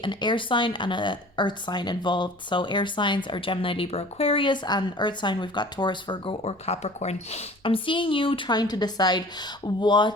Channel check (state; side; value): normal; both; correlation 0.45